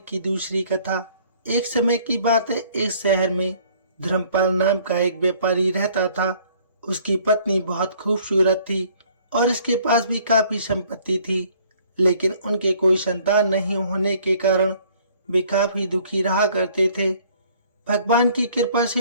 दूसरी कथा। एक समय की बात है, एक शहर में धर्मपाल नाम का एक व्यापारी रहता था। उसकी पत्नी बहुत खूबसूरत थी और इसके पास भी काफी संपत्ति थी, लेकिन उनके कोई संतान नहीं होने के कारण वे काफी दुखी रहा करते थे। भगवान की कृपा से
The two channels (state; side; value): inverted; both; correlation -0.58